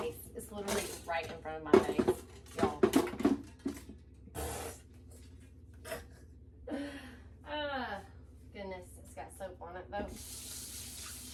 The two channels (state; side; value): identical; both; correlation 1.00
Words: face. It's literally right in front of my face, y'all. Goodness, it's got soap on it though.